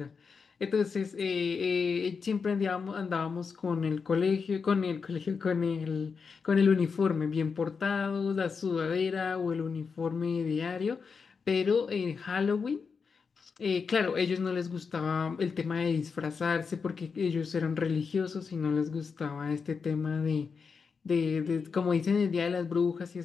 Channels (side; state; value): right; quieter; 5.4 dB